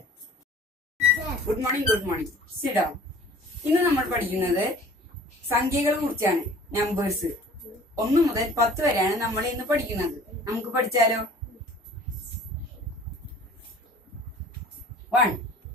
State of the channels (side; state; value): both; normal; correlation 0.48